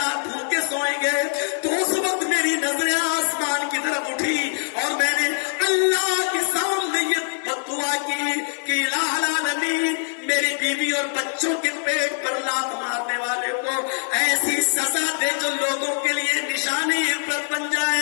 بھوکے سوئیں گے، تو اس وقت میری نظریں آسمان کی طرف اٹھی اور میں نے اللہ کے سامنے یہ بد دعا کی کہ الہ العالمین، میری بیوی اور بچوں کے پیٹ پر لات مارنے والے کو ایسی سزا دے جو لوگوں کے لیے نشان عبرت بن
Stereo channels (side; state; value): right; silent; 63 dB below the other